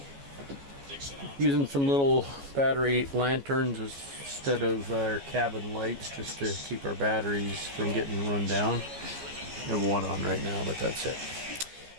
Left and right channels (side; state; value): left; late; 14 ms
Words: Using some little battery lanterns instead of our cabin lights, just to keep our batteries from getting run down. I have one on right now, but that's it.